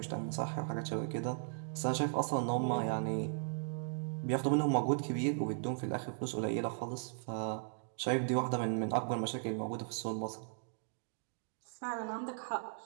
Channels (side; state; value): left; silent; digital silence